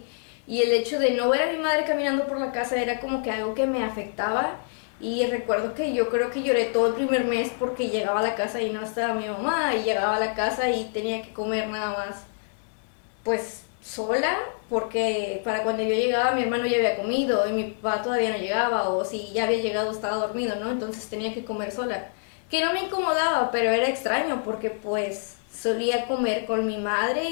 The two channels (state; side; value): silent; right; 61 dB below the other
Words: Y el hecho de no ver a mi madre caminando por la casa era como que algo que me afectaba. Y recuerdo que yo creo que lloré todo el primer mes porque llegaba a la casa y no estaba mi mamá, y llegaba a la casa y tenía que comer nada más pues sola, porque para cuando yo llegaba mi hermano ya había comido y mi papá todavía no llegaba, o si ya había llegado estaba dormido, ¿no? Entonces tenía que comer sola, que no me incomodaba, pero era extraño porque pues solía comer con mi madre